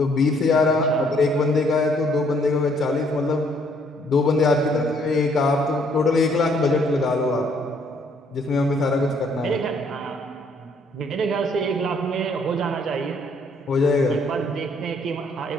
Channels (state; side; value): normal; both; correlation 0.66